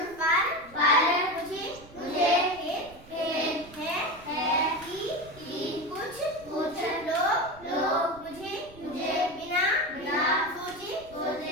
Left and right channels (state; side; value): noise; right; rumble, 21 dB below the sound